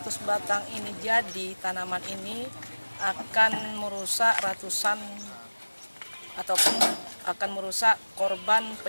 batang ini jadi, tanaman ini akan merusak ratusan ataupun akan merusak korban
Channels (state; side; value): inverted; both; correlation -1.00